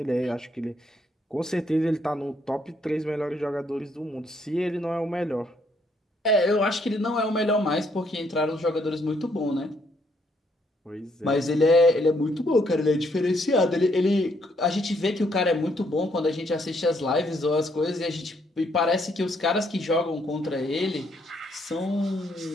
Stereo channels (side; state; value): both; normal; correlation 0.71